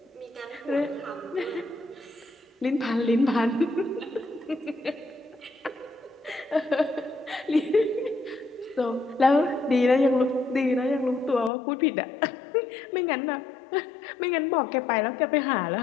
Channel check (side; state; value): right; drops out; at 11.5 s